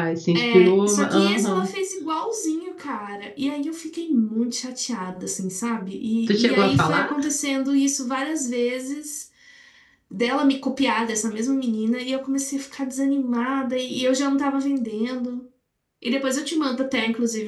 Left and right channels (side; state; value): both; identical; correlation 1.00